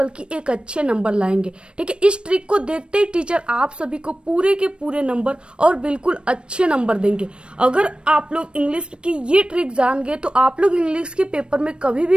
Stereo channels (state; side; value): late; left; 0.056 ms